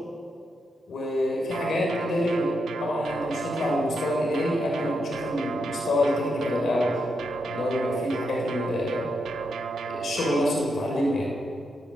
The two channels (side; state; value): both; normal; correlation 0.82